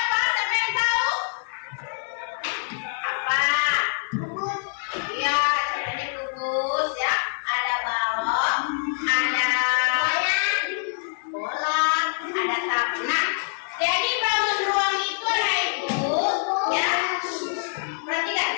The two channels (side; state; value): right; silent; digital silence